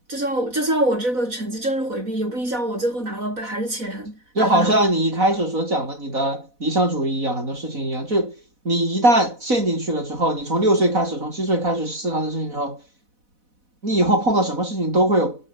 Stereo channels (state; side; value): late; left; 4.1 ms